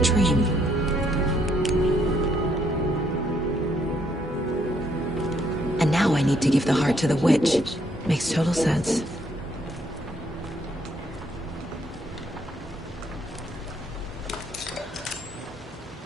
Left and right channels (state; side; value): normal; both; correlation 0.70